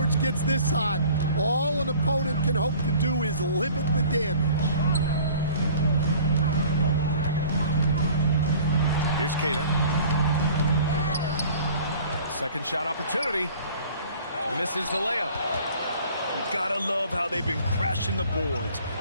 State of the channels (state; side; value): inverted; both; correlation -0.49